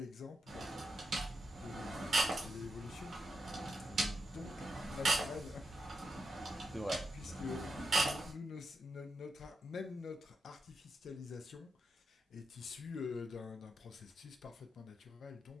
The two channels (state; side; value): normal; both; correlation 0.85